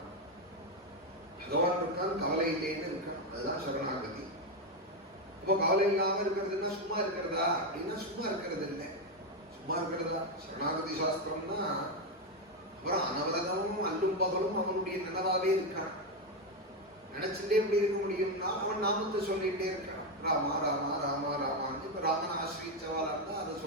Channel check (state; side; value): normal; both; correlation 0.08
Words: பகவான் இருக்கான், கவலை இல்லைன்னு இருக்கணும். அதுதான் சரணாகதி. இப்போ கவலை இல்லாம இருக்கிறதுன்னா சும்மா இருக்கிறதா அப்படின்னா சும்மா இருக்கிறது இல்லை. சும்மா இருக்கிறதா சரணாகதி சாஸ்திரம்னா அப்புறம் அனவரதமும் அல்லும் பகலும் அவனுடைய நினைவாவே இருக்கான். நினைச்சுட்டே எப்படி இருக்க முடியும்னா அவன் நாமத்தை சொல்லிட்டே இருக்கான். ராமா ராமா ராமா ராமான்னு. இப்ப ராமன் ஆசிரியச்சவாளா இருந்தா அதை